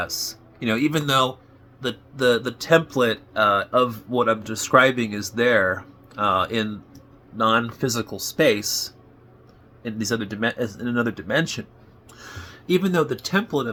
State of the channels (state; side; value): identical; both; correlation 1.00